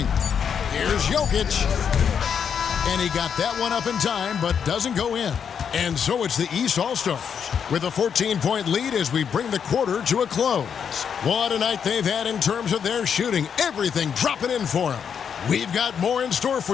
Here's Jokic. And he got that one up in time, but doesn't go in. And so it's the East All-Stars with a 14-point lead as we bring the quarter to a close. What a night they've had in terms of their shooting. Everything dropping in for them. We've got more in store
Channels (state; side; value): quieter; right; 7.4 dB